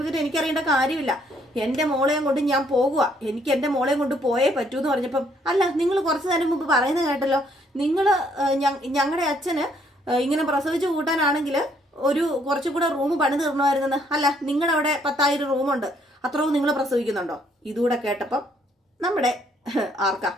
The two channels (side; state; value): both; normal; correlation 0.67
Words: എനിക്കറിയേണ്ട കാര്യമില്ല. എന്റെ മോളെയും കൊണ്ട് ഞാൻ പോകുക, എനിക്ക് എന്റെ മോളെയും കൊണ്ട് പോയേ പറ്റൂ എന്ന് പറഞ്ഞപ്പം അല്ല നിങ്ങൾ കുറച്ചു നേരം മുമ്പ് പറയുന്നത് കേട്ടല്ലോ, ഞങ്ങളുടെ അച്ഛന് ഇങ്ങനെ പ്രസവിച്ചു കൂട്ടാനാണെങ്കിൽ ഒരു കുറച്ചുകൂടെ റൂം പണി തീർണമായിരുന്നെന്ന്, അല്ല നിങ്ങളുടെ അവിടെ 10,000 റൂമുണ്ട്, അത്രയും നിങ്ങൾ പ്രസവിക്കുന്നുണ്ടോ. ഇതുകൂടെ കേട്ടപ്പം നമ്മുടെ ആർക്കാ